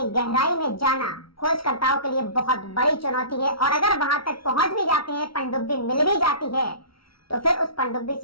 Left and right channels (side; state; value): right; late; 0.75 ms